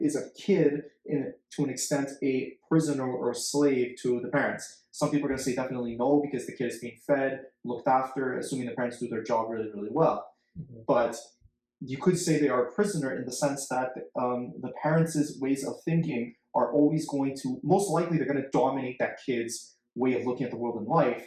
is a kid to an extent a prisoner or a slave to the parents? Some people are going to say definitely no, because the kid is being fed, looked after, assuming the parents do their job really, really well. But you could say they are a prisoner in the sense that the parents' ways of thinking are always going to, most likely they're going to dominate that kid's way of looking at the world and life,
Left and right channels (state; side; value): identical; both; correlation 1.00